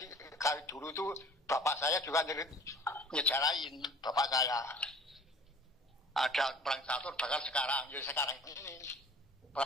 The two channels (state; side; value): normal; both; correlation 0.48